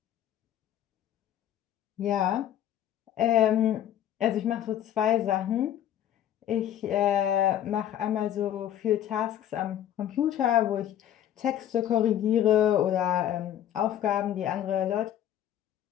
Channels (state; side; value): quieter; right; 11.1 dB